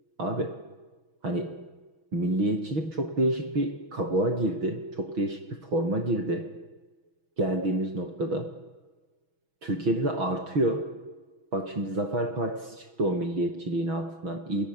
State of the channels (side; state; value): left; late; 6.2 ms